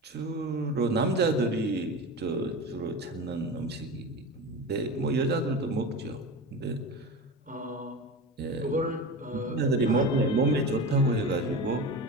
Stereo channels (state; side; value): normal; both; correlation 0.27